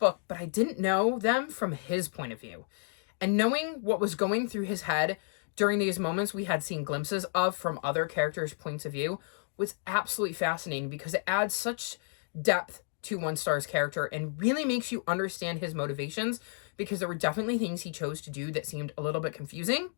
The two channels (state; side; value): silent; right; digital silence